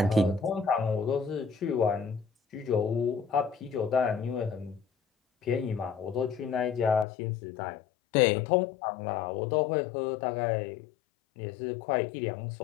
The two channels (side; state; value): right; drops out; at 7.1 s